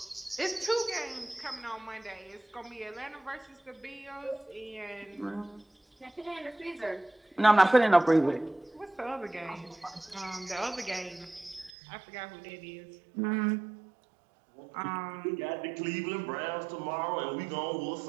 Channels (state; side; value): drops out; left; at 11.7 s